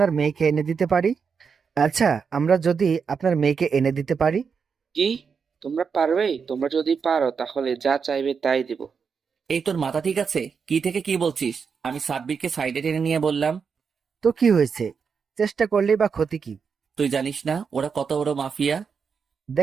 মেয়েকে এনে দিতে পারি? কি? তোমরা পারবে? তোমরা যদি পারো তাহলে যা চাইবে তাই দেব। এই, তোর মাথা ঠিক আছে? কি থেকে কি বলছিস? আমি সাব্বিরকে সাইডে টেনে নিয়ে বললাম, তো কি হয়েছে? চেষ্টা করলেই বা ক্ষতি কি? তুই জানিস না ওরা কত বড় মাফিয়া?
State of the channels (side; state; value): left; quieter; 5.9 dB